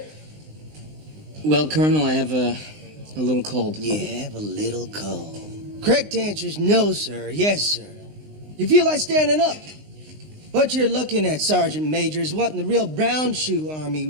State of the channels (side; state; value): left; late; 19 ms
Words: Well, Colonel, I have a little cold. You have a little cold. Correct answer is no, sir. Yes, sir. You feel like standing up. What you're looking at, Sergeant Major, is what in the real brown shoe army